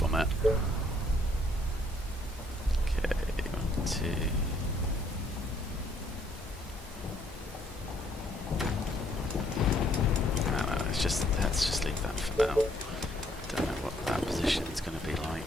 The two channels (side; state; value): both; normal; correlation 0.66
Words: it. Okay, 1, 2... let's just leave that for now. Don't know what that position is going to be